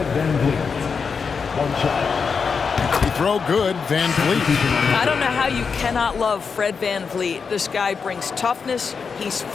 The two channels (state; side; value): quieter; right; 5.6 dB